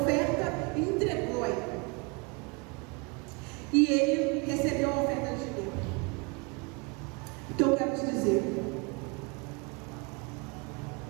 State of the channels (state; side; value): quieter; left; 30.2 dB